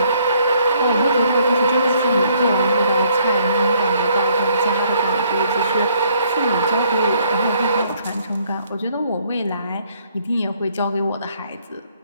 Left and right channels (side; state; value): both; inverted; correlation -0.65